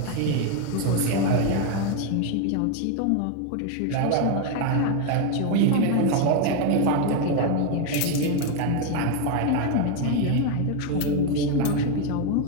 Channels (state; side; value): different; both; correlation 0.02